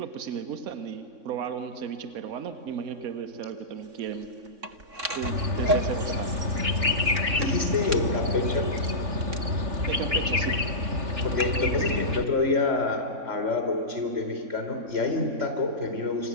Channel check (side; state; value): left; late; 3.6 ms